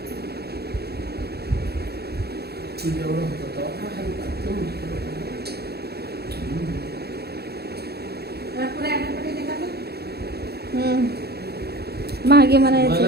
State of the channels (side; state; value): left; late; 0.47 ms